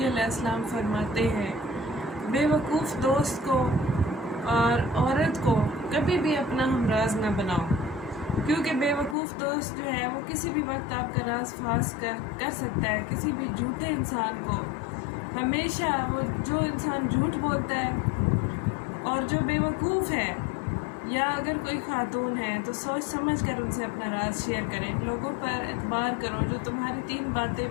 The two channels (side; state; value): right; drops out; at 9.2 s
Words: अलैहिस्सलाम फरमाते हैं, बेवकूफ़ दोस्त को और औरत को कभी भी अपना हमराज न बनाओ, क्योंकि बेवकूफ़ दोस्त जो है वो किसी भी वक्त आपका राज फास कर सकता है। किसी भी झूठे इंसान को हमेशा वो जो इंसान झूठ बोलता है और जो बेवकूफ़ है, या अगर कोई खातून है तो सोच समझ कर उनसे अपना राज शेयर करें। लोगों पर एतबार करो जो तुम्हारी 3 बातें